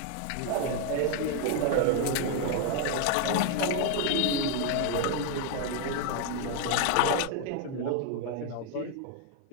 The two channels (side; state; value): both; different; correlation 0.01